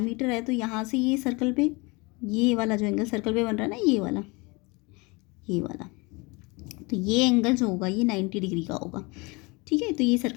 है तो यहाँ से ये सर्कल पे, ये वाला जो एंगल सर्कल पे बन रहा है ना, ये वाला, तो ये एंगल जो होगा ये 90 डिग्री का होगा। ठीक है, तो ये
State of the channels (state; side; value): quieter; right; 26.7 dB